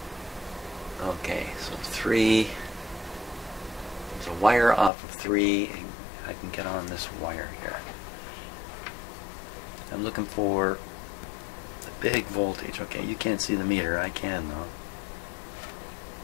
Okay, so 3. There's a wire off of 3. And I can get on this wire here. I'm looking for the big voltage. Okay, you can't see the meter. I can though.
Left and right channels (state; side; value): drops out; right; at 4.9 s